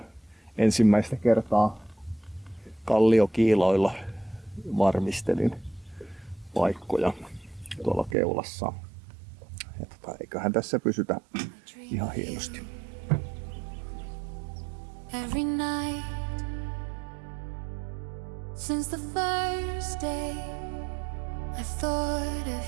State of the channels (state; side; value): drops out; left; at 8.2 s